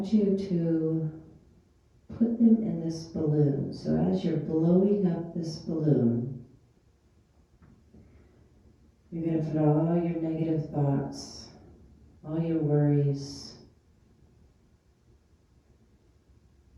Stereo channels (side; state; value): both; identical; correlation 1.00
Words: you to put them in this balloon. So as you're blowing up this balloon, you're going to put all your negative thoughts, all your worries,